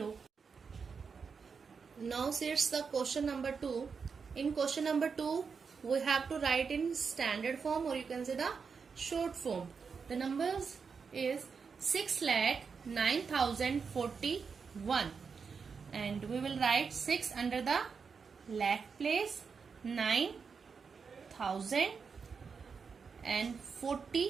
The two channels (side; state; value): left; quieter; 5.6 dB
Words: Now see it's the question number 2. In question number 2, we have to write in standard form, or you can say the short form. The numbers is 6,09,040 1. And we will write 6 under the lakh place, 9,000, and